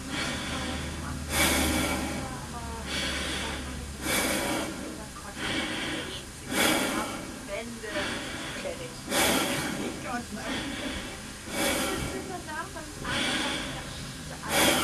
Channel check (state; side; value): identical; both; correlation 1.00